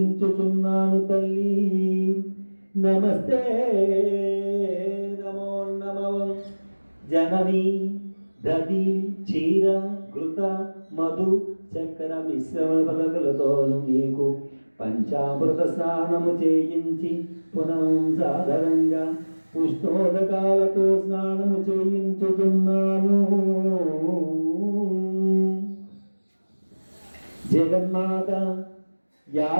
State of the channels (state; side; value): inverted; both; correlation -1.00